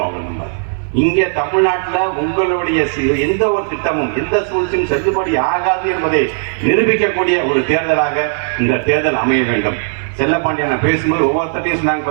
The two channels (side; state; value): left; silent; 57 dB below the other